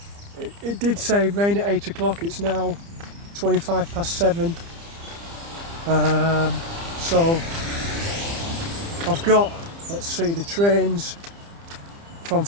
It did say rain at 8 o'clock, it's now 25 past 7. So I've got, let's see, the trains from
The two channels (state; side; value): late; left; 30 ms